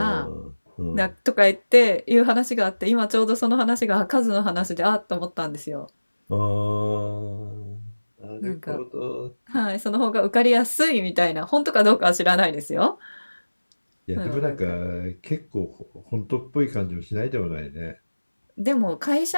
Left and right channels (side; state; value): both; inverted; correlation -1.00